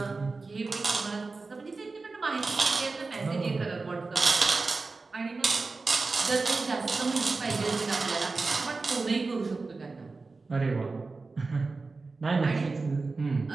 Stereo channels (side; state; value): left; quieter; 3.9 dB